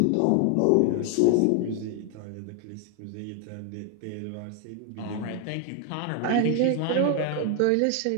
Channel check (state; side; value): different; both; correlation 0.00